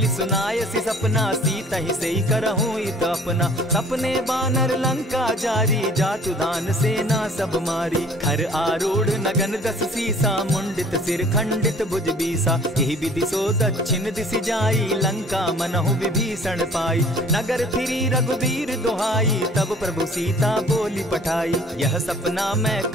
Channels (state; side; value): normal; both; correlation 0.52